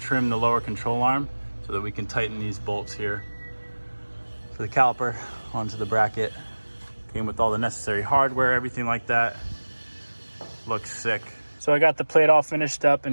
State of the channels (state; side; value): inverted; both; correlation -1.00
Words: the lower control arm so that we can tighten these bolts here for the caliper onto the bracket. Came with all the necessary hardware, everything like that. Looks sick. So I got the plate all finished up